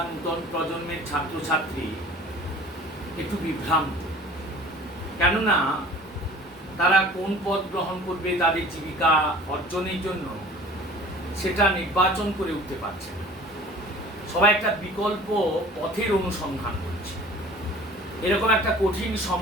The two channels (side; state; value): both; normal; correlation 0.46